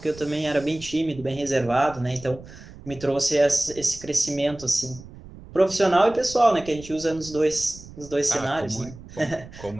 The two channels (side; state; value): right; noise; rumble, 17 dB below the sound